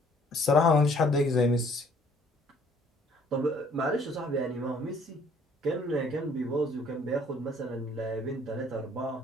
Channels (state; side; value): normal; both; correlation 0.60